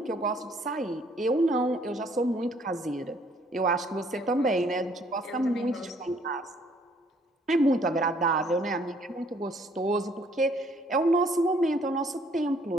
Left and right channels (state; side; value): normal; both; correlation 0.63